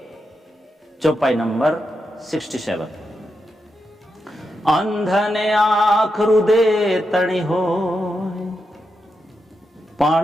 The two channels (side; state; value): both; normal; correlation 0.86